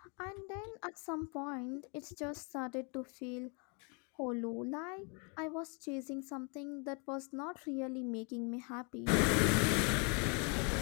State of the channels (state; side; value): quieter; right; 35.0 dB